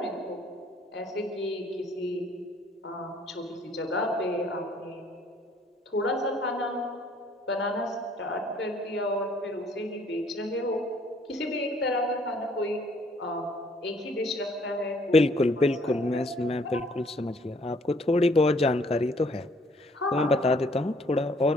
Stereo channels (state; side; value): normal; both; correlation 0.62